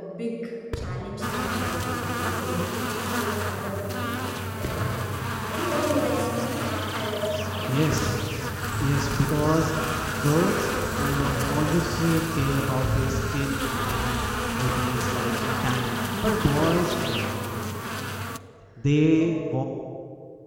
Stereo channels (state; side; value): identical; both; correlation 1.00